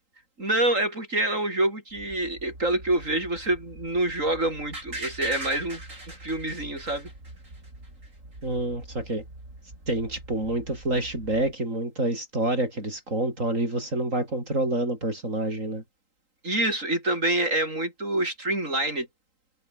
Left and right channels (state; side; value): late; left; 3.8 ms